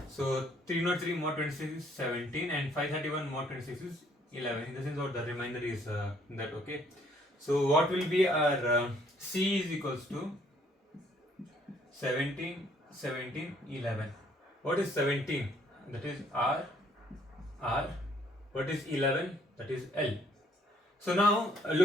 So 303 mod 26 is 17 and 531 mod 26 is 11. In the sense what the remainder is that, okay. So what will be our C is equals to 17, 17, 11. What is 17? That is R. What is 11? That is L. So now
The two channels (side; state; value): both; normal; correlation 0.64